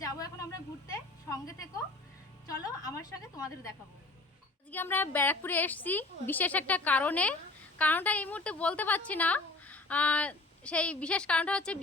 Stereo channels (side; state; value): right; quieter; 3.0 dB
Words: যাবো এখন আমরা ঘুরতে। সঙ্গে থেকো, চলো আমার সঙ্গে তোমাদের দেখাবো। আজকে আমরা ব্যারাকপুরে এসেছি বিশেষ একটা কারণটা এই মুহূর্তে বলতে পারছি না। সেই বিশেষ কারণটা হচ্ছে